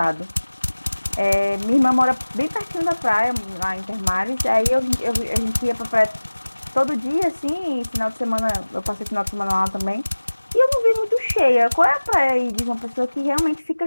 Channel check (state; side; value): inverted; both; correlation -1.00